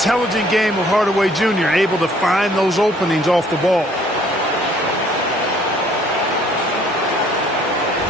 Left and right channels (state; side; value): normal; both; correlation 0.60